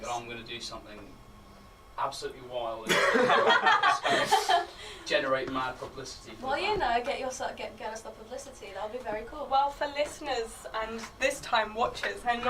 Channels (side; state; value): both; identical; correlation 1.00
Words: that I'm going to do something absolutely wild and generate mad publicity. For Well, the you band. know, get us the publicity. That would be very cool. Well, for listeners and this time watchers, I'm